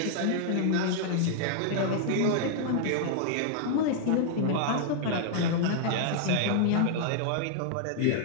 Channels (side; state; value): both; different; correlation -0.01